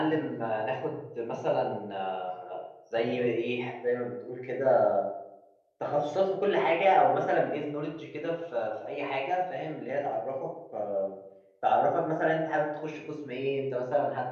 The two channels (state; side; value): identical; both; correlation 1.00